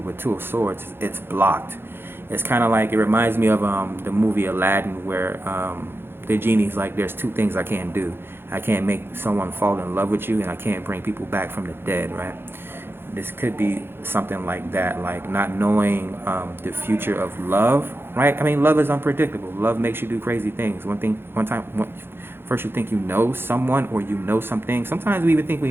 with Two of Swords, it's blocked. It's kind of like, it reminds me of the movie Aladdin, where the genie's like, there's two things I can't do. I can't make someone fall in love with you, and I can't bring people back from the dead, right? This could be something like that, like not knowing the future of love, right? I mean, love is unpredictable. Love makes you do crazy things. First you think you know someone, or you know something. Sometimes we even think we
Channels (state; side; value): late; left; 0.11 ms